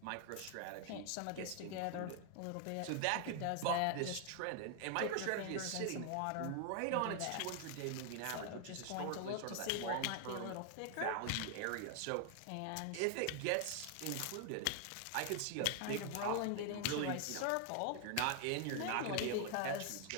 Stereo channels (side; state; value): both; different; correlation 0.00